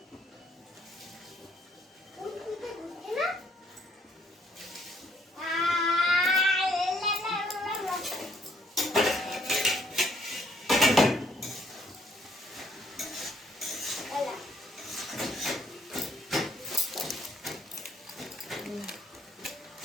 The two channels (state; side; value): normal; both; correlation 0.68